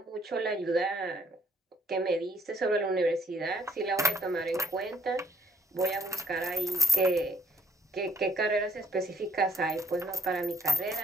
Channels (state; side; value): normal; both; correlation 0.67